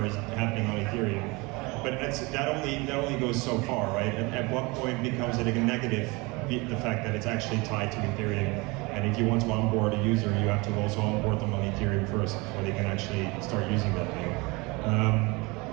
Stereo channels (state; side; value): quieter; left; 25.5 dB